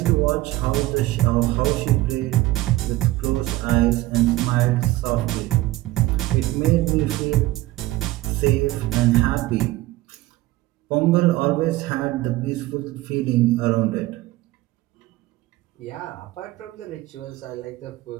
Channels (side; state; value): left; quieter; 17.6 dB